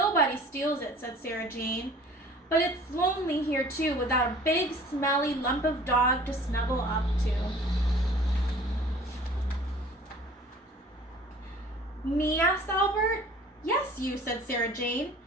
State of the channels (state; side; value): normal; both; correlation 0.48